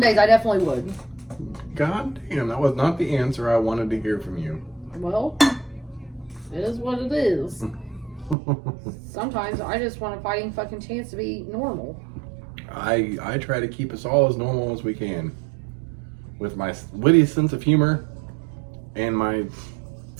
I definitely would. God damn, that was not the answer I wanted to hear from you. Well, it is what it is. Sometimes I just want a fighting fucking chance to be normal. I try to keep us all as normal as we can. With my witty sense of humor and my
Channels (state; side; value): drops out; left; at 8.3 s